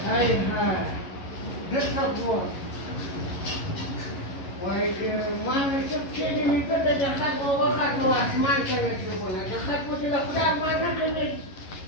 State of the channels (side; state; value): right; late; 11 ms